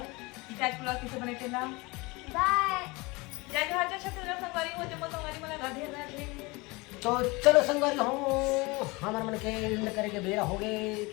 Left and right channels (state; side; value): quieter; right; 24.8 dB